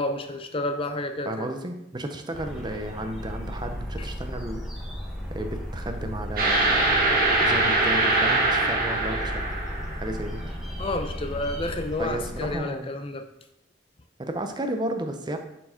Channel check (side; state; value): both; normal; correlation 0.16